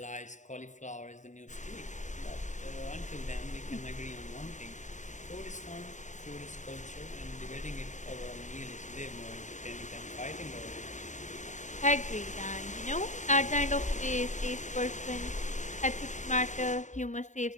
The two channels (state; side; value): late; right; 0.35 ms